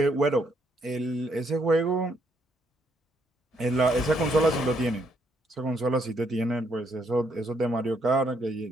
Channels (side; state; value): both; normal; correlation 0.73